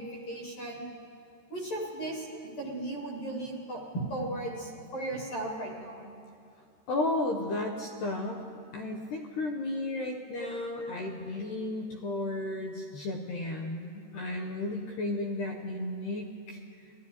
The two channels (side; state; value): right; late; 13 ms